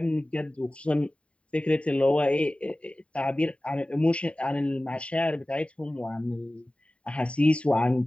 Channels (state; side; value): late; right; 0.062 ms